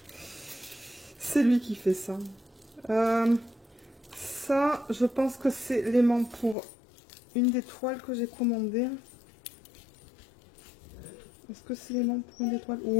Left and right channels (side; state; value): right; drops out; at 6.6 s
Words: C'est lui qui fait ça. Ça, je pense que c'est l'aimant pour une des toiles que j'ai commandées. Est-ce que c'est l'aimant pour une des toiles?